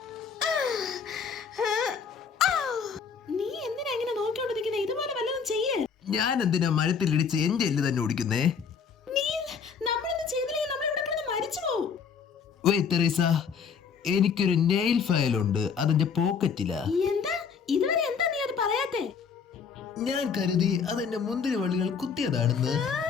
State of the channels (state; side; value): quieter; right; 6.3 dB